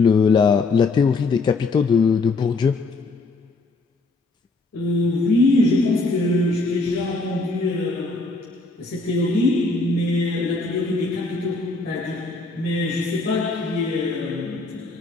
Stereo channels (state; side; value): quieter; right; 3.5 dB